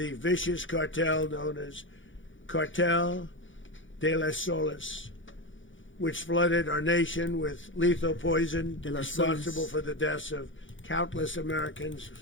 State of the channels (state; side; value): late; right; 0.56 ms